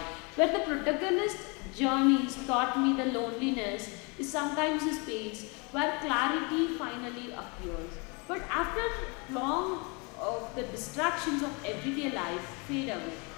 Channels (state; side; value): quieter; right; 31.2 dB